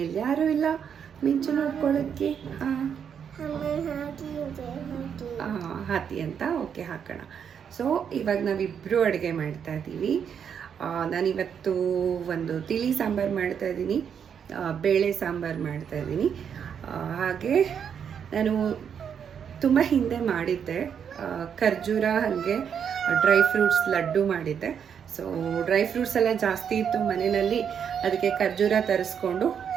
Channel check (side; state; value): left; quieter; 7.7 dB